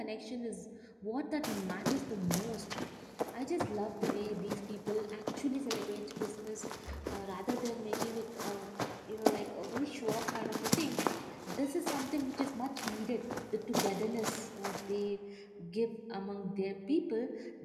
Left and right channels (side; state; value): both; identical; correlation 1.00